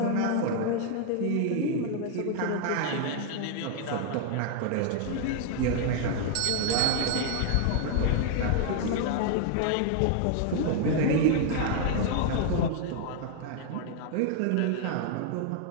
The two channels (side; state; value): both; different; correlation 0.00